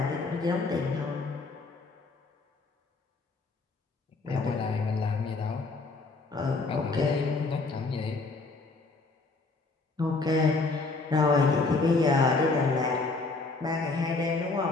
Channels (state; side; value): quieter; right; 3.7 dB